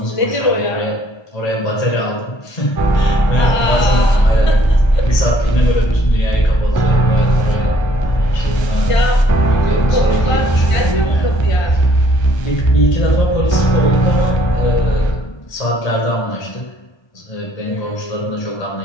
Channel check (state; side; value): late; right; 1.3 ms